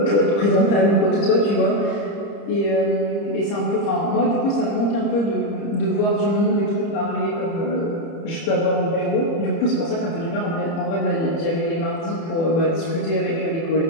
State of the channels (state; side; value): late; right; 30 ms